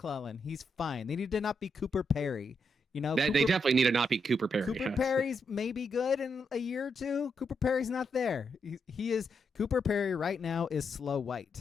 he's fine. They need to not be Cooper Perry. They definitely need to not be Cooper Perry. Cooper Perry's maybe good in a year or 2. Cooper Perry's not there. He is Cooper Perry right now is Slow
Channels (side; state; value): both; normal; correlation 0.81